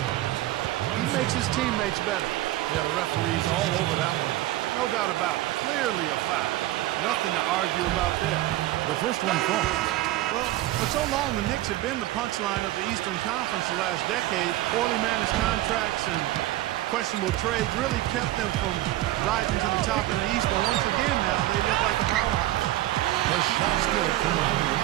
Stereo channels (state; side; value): quieter; left; 15.8 dB